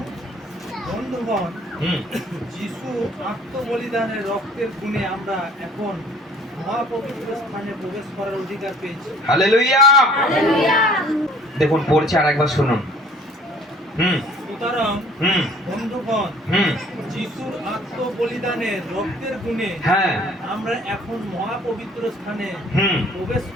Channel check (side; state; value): both; normal; correlation 0.54